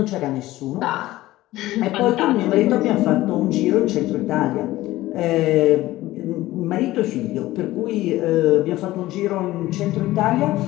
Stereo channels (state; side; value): quieter; right; 16.7 dB